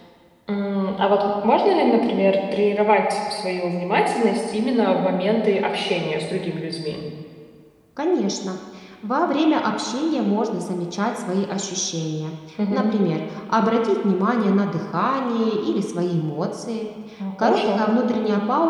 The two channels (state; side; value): identical; both; correlation 1.00